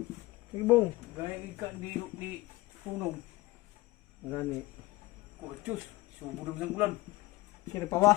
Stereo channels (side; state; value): right; quieter; 19.2 dB